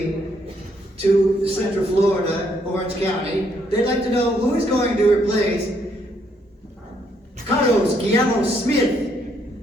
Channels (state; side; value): normal; both; correlation 0.71